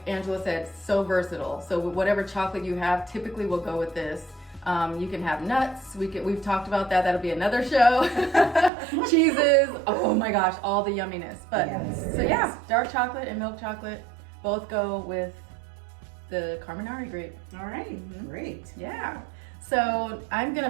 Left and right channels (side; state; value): left; drops out; at 8.7 s